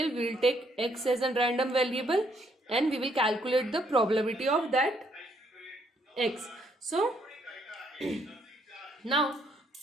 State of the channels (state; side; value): normal; both; correlation 0.70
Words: we will take x as a random variable and we will calculate the probability of that x. So now